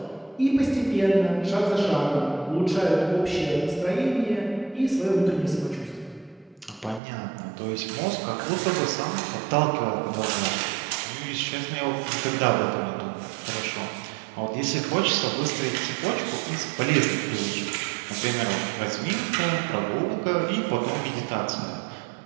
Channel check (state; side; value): drops out; left; at 7.0 s